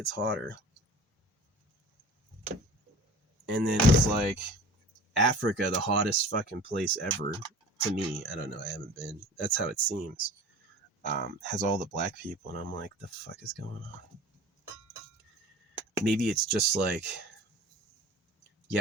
hotter. And then it's like Africa, the hottest fucking place ever. To me, I don't know, I haven't been. That's how it seems. Has all the black people, and I'm like, the fuck is going on? Maybe it's just like,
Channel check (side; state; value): both; normal; correlation 0.42